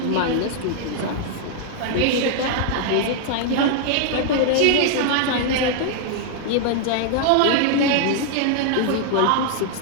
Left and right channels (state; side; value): different; both; correlation 0.00